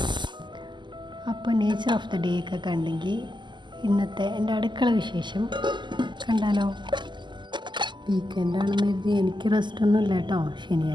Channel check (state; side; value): late; left; 0.22 ms